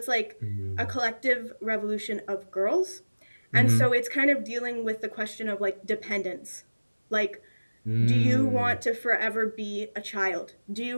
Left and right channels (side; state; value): both; inverted; correlation -1.00